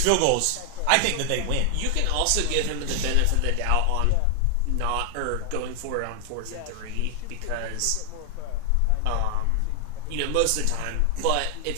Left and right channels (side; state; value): both; different; correlation 0.00